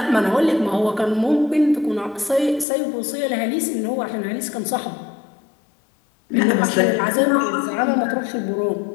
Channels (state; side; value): drops out; right; at 2.7 s